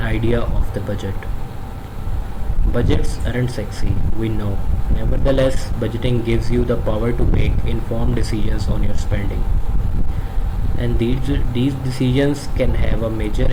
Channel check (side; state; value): both; identical; correlation 1.00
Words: idea of the budget. Budgets aren't sexy, we know. Nevertheless, budgeting gives you the power to make informed decisions on your spending. And these decisions can have a major